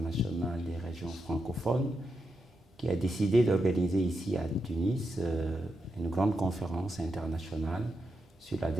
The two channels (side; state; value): both; normal; correlation 0.85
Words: des régions francophones qui a décidé d'organiser ici à Tunis une grande conférence internationale sur la